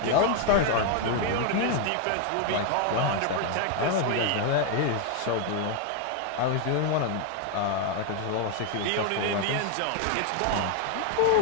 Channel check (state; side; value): different; both; correlation 0.00